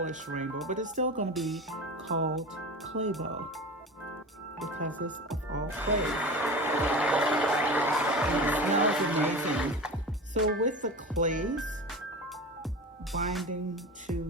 rainbow, but it's still going to be called Claybow because it's of all clay. And it smells amazing. So with the clays binding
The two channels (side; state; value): both; normal; correlation 0.30